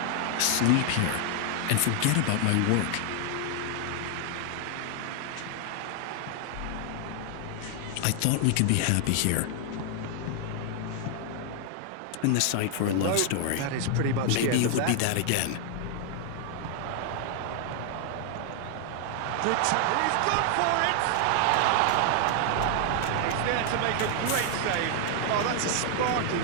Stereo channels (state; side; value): different; both; correlation 0.00